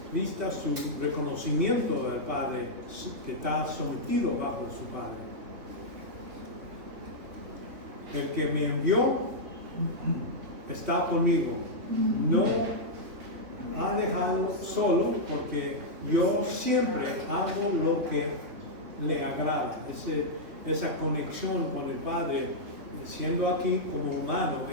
su reconocimiento del Padre, que está sometido bajo su Padre. El que me envió está conmigo, no ha dejado solo, porque yo siempre hago lo que le agrada. Esa conexión con el Padre, siendo aquí como humano,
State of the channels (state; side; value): late; left; 3.4 ms